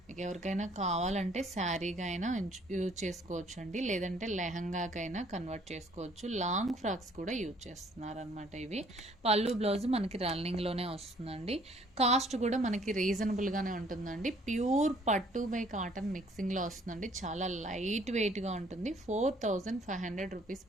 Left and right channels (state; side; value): normal; both; correlation 0.60